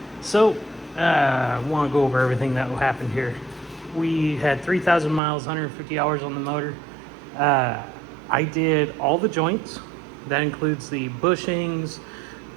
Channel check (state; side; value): drops out; left; at 5.2 s